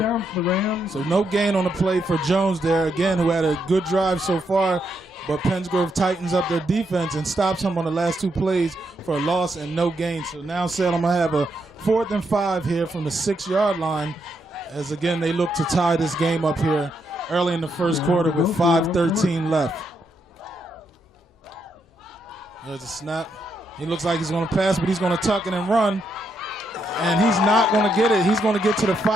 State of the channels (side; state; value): both; normal; correlation 0.79